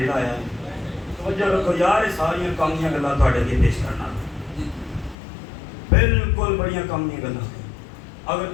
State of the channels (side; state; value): right; drops out; at 5.2 s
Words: لایا۔ توجہ رکھو یار، یہ ساری کامیاں گلاں تواڈے اگے پیش کرنا، بالکل بڑیاں کامیاں گلاں، اگر